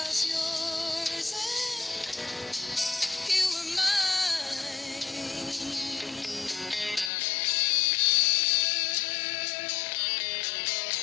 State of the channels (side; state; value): right; drops out; at 7.1 s